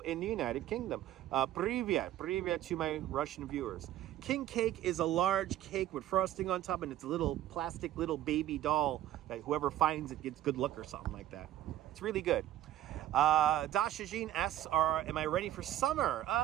the United Kingdom. Привет to my Russian viewers. King cake is a large cake with frosting on top, and it's a little plastic little baby doll that whoever finds it gets good luck or something like that. It's really good. Dasha Jean asks, am I ready for summer?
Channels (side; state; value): left; quieter; 13.1 dB